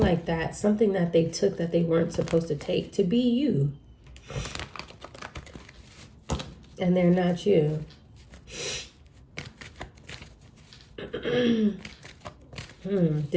like that. Something that they took that they weren't supposed to take to be you. And they're not you.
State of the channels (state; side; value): identical; both; correlation 1.00